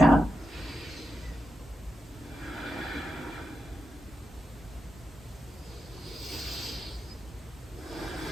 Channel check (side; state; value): both; normal; correlation 0.88